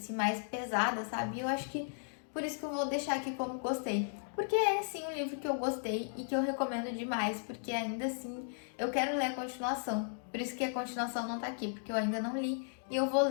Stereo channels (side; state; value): right; silent; digital silence